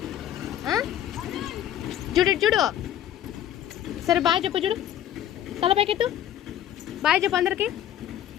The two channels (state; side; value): quieter; right; 11.2 dB